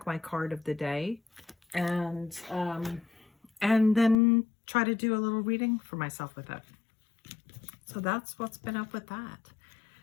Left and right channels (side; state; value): right; drops out; at 4.2 s